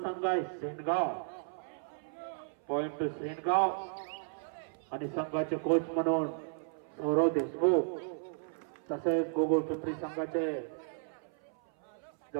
संघ आहे सेनगाव पॉइंट टू सेनगाव आणि संघाचे कोच म्हणून सौरव देशमुख तसेच गोकुळपिंपरी संघाचे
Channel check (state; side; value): silent; left; 55 dB below the other